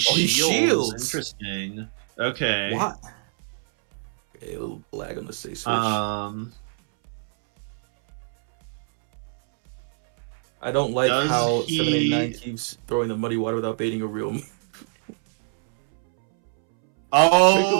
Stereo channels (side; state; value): left; silent; 62 dB below the other